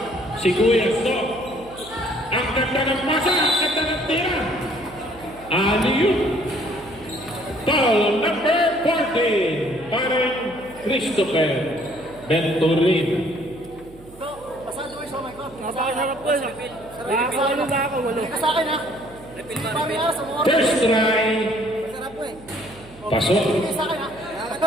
Si Kuya Stop. Ang ganda ng masa, ang ganda ng tira. Aliyu. Foul number 14. Parang Christopher Venturin. Napakasarap ko yun. Nakakaano na ako, walo. Sa akin ha. First try. Sarap po eh. Pasok. Sa akin ha.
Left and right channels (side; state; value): right; noise; hum, 22 dB below the sound